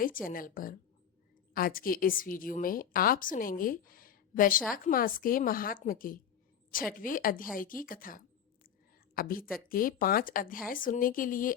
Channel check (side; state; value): right; quieter; 8.7 dB